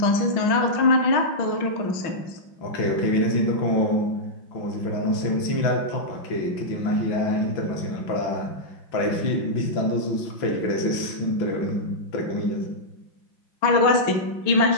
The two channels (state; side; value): late; right; 5.9 ms